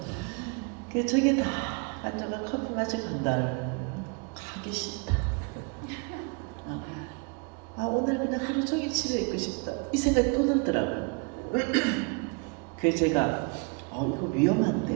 그래서 저기 다 앉아가 커피 마시고 간다. 가기 싫다. 오늘 그냥 하루 종일 집에 있고 싶다. 이 생각이 또 들더라고요. 그래서 제가 이거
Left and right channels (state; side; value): quieter; left; 34.3 dB